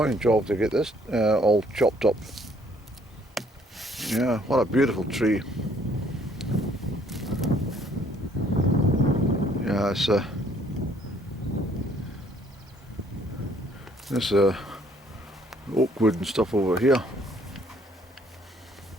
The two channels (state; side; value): normal; both; correlation 0.63